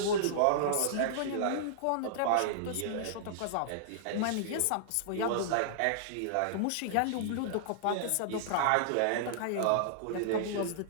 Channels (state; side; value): different; both; correlation -0.01